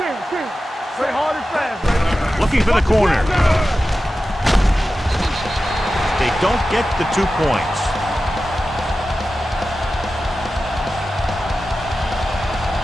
Play hard and fast, baby. Looking for the corner. They don't get the 2 points.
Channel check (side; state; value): both; normal; correlation 0.93